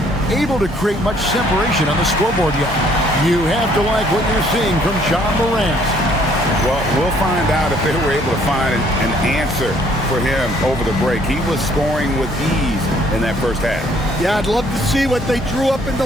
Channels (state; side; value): normal; both; correlation 0.63